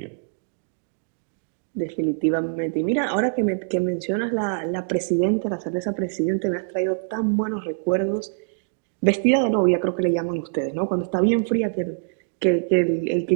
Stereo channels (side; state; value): left; silent; digital silence